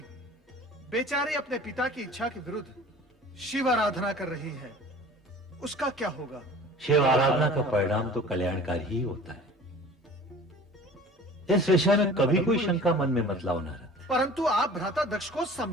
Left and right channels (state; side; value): normal; both; correlation 0.44